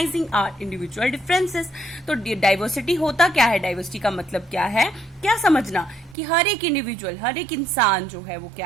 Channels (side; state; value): left; drops out; at 6.2 s